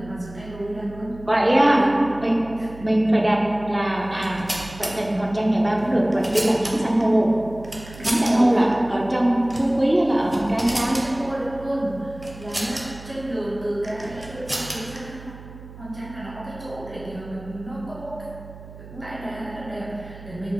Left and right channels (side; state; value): right; noise; hum, 17 dB below the sound